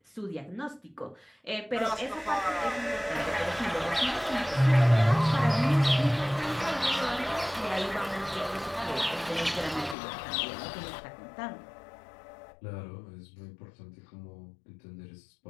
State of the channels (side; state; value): right; drops out; at 10.0 s